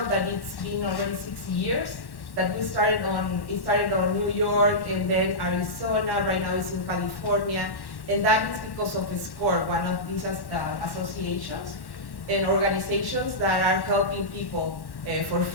that it's been already 6 years. That it started on New York, and then Arizona. Right now it's in California, and that is because of SCORE, one of these associations and organizations that are helping people for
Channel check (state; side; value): late; right; 1.1 ms